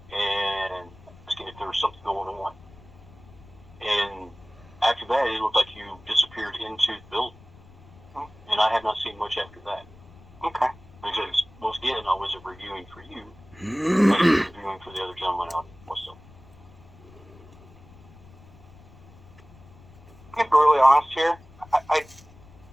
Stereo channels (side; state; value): left; noise; rumble, 22 dB below the sound